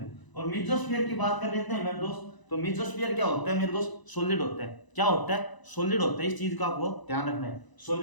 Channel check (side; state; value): right; late; 1.0 ms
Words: है। और मिजोस्फीयर की बात कर लेते हैं मेरे दोस्त, तो मिजोस्फीयर क्या होता है मेरे दोस्त, सॉलिड होता है। क्या होता है, सॉलिड होता है। इस चीज का आपको ध्यान रखना है,